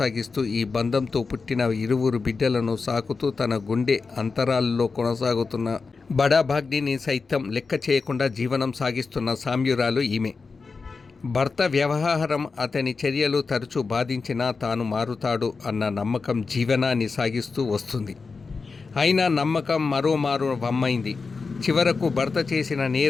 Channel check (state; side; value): quieter; right; 4.5 dB